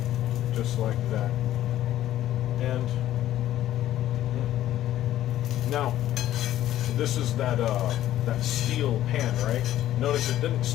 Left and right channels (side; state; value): right; quieter; 13.0 dB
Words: Just like that. And now, this is that steel pan, right? Notice it didn't